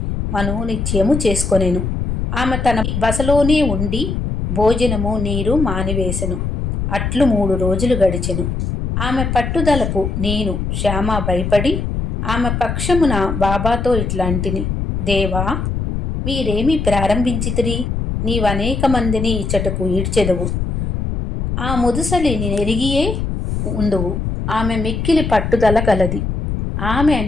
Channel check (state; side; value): noise; left; rumble, 2 dB below the sound